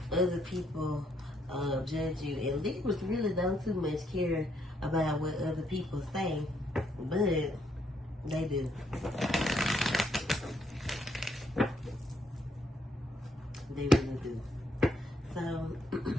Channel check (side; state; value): both; normal; correlation 0.73